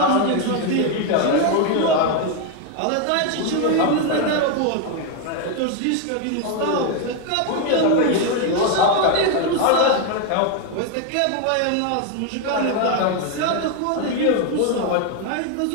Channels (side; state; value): both; different; correlation 0.01